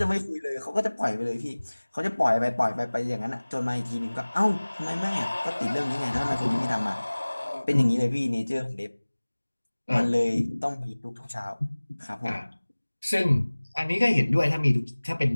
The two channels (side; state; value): both; inverted; correlation -1.00